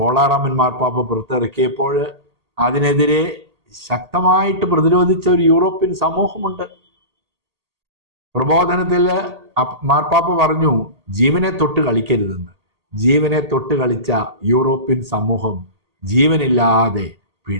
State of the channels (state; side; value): late; left; 1.8 ms